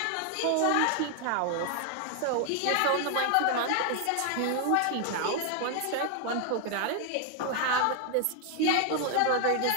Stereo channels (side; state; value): both; different; correlation 0.00